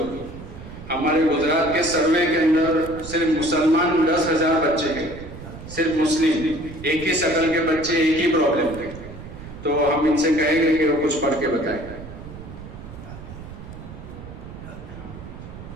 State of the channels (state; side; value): noise; right; rumble, 13 dB below the sound